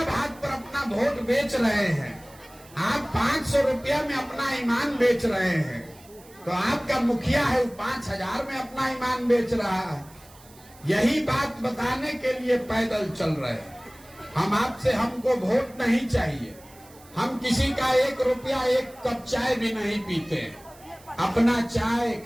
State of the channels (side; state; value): right; noise; hiss, 24 dB below the sound